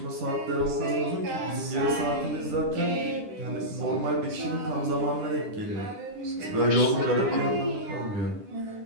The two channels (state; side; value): late; left; 10 ms